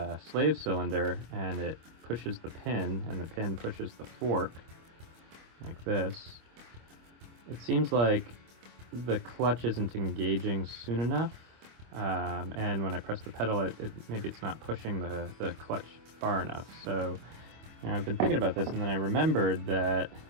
slave cylinder and it pushes the pin and the pin pushes the fork like this, it seems like the clutch isn't engaging soon enough, and when I press the pedal maybe it's not pushing the clutch far enough. So I've been thinking about this, and then I remembered that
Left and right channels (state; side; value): late; left; 25 ms